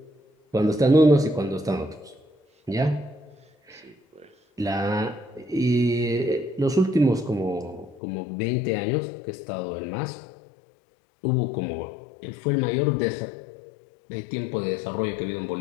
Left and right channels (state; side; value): drops out; right; at 8.0 s